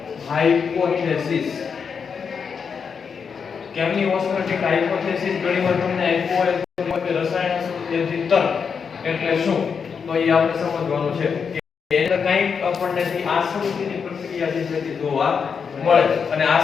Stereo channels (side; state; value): right; quieter; 6.2 dB